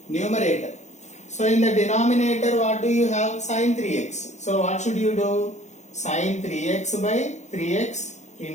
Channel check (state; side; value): late; right; 0.34 ms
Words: numerator, so in the denominator what do you have? Sin 3x. So what should you do? Sin 3x by 3x